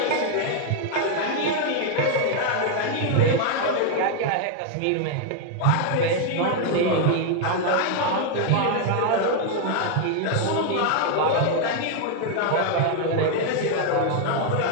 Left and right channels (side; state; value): both; different; correlation 0.00